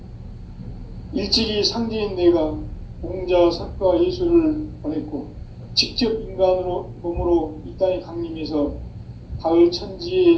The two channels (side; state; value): both; identical; correlation 1.00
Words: 일찍이 상제인 내가 공자, 석가, 예수를 보냈고 직접 인간으로 몸으로 이 땅에 강림해서 가을 천지의